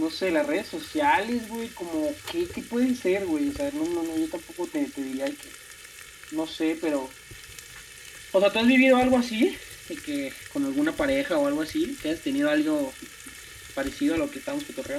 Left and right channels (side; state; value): both; identical; correlation 1.00